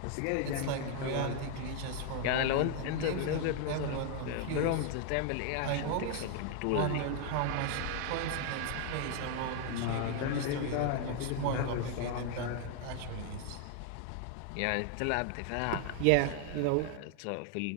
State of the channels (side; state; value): both; different; correlation 0.00